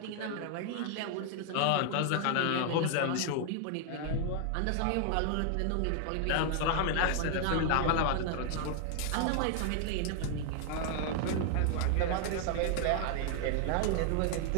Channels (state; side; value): different; both; correlation 0.00